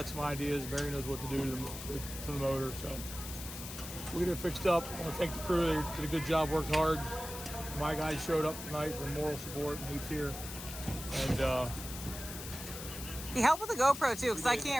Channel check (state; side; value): noise; left; hiss, 10 dB below the sound